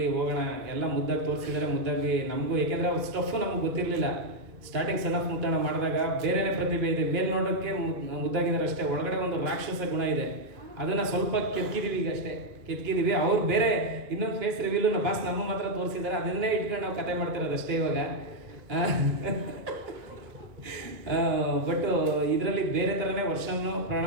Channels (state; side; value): late; left; 2.4 ms